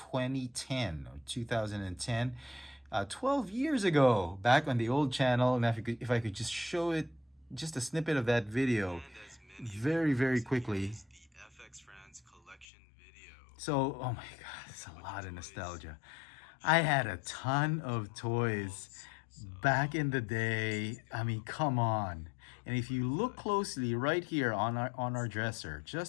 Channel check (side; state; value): right; drops out; at 12.7 s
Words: or 2010. 12 years ago, back on the old channel. And if I could just show it, just a snippet of that video very, very quickly. So, oh my God, it's a lot of nostalgia. I had a ton of toys back in the day. I mean, come on. And if you look closely right here on our dresser,